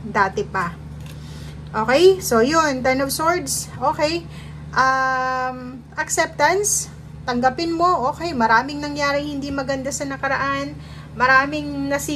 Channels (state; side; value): identical; both; correlation 1.00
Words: dati pa. Okay? So, yun. Ten of Swords. Okay. Acceptance. Tanggapin mo. Okay. Maraming nangyari hindi maganda sa nakaraan. Maraming